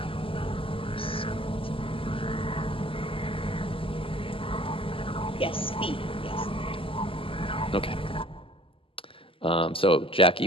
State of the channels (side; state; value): right; late; 0.26 ms